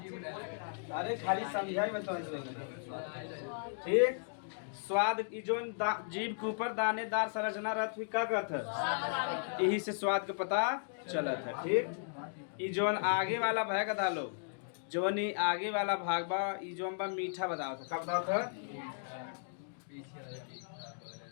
अरे खाली समझाई बताओ। ठीक, स्वाद जो जीभ के ऊपर दानेदार संरचना रहत हुई का कहत है, यही से स्वाद का पता चलत है। ठीक, ई जोन आगे वाला भाग डालो, जोन ही आगे वाला भाग बा ई जोन बा मीठा बताओ था, का बताओ था?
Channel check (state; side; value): silent; right; digital silence